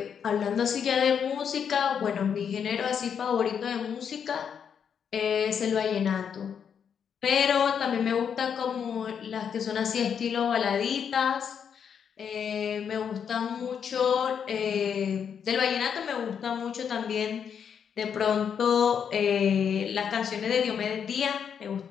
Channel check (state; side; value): quieter; right; 7.5 dB